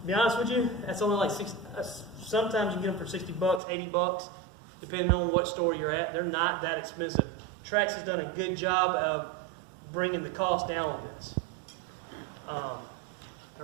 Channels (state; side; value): drops out; left; at 3.6 s